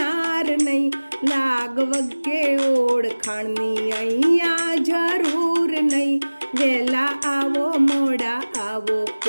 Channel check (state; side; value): inverted; both; correlation -1.00